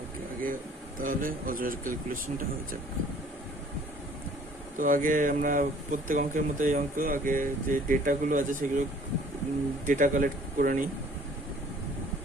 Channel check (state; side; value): normal; both; correlation 0.54